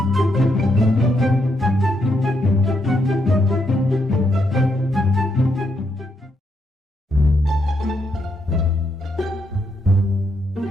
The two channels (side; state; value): both; normal; correlation 0.78